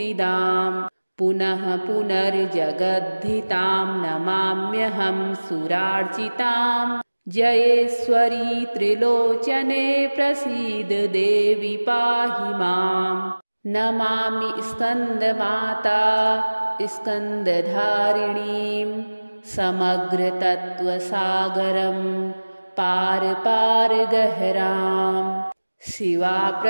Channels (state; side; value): inverted; both; correlation -1.00